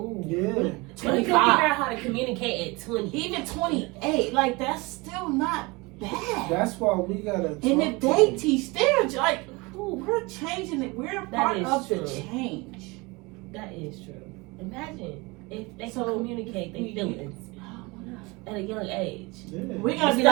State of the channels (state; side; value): quieter; left; 25.1 dB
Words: yeah. 25. Figure out how to communicate at 20. Even 28. Like, that's still not bad. That's why we gotta. And if they teach their, like, we're changing it. We're a part of the change. That is true. Imagine if they can communicate their feelings at a young age. We're gonna be